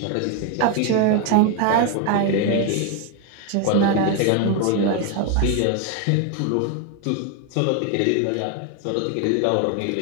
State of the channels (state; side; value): different; both; correlation 0.01